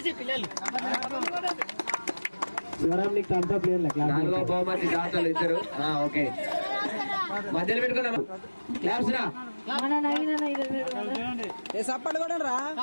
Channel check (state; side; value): inverted; both; correlation -1.00